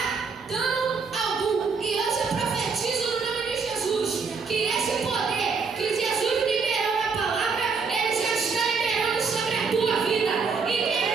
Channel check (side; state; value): left; quieter; 5.1 dB